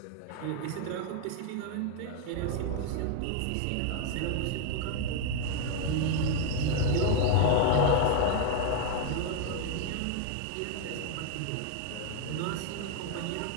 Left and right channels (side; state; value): both; different; correlation 0.01